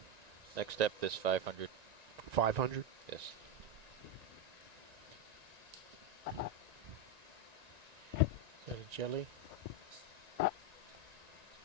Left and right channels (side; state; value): left; late; 1.9 ms